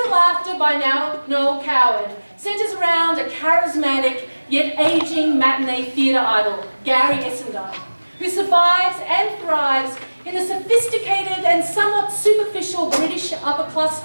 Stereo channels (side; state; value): both; inverted; correlation -1.00